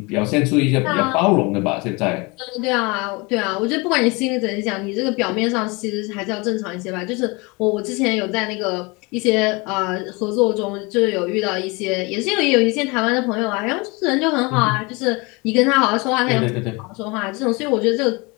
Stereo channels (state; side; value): quieter; right; 26.9 dB